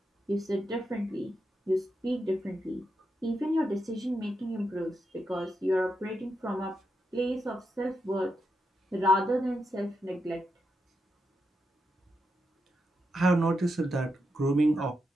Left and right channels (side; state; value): both; normal; correlation 0.85